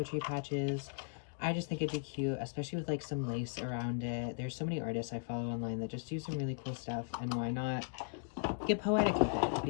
patches. I just think it'd be cute, especially with like some lace around it. There's so many artists I follow online that just do some really cool stuff, and why not get poetic with it?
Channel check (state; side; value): silent; right; digital silence